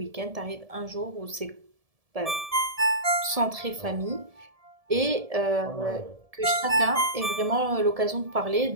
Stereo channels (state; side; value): late; left; 1.7 ms